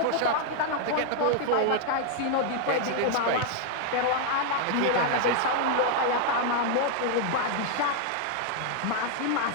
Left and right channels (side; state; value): both; different; correlation 0.00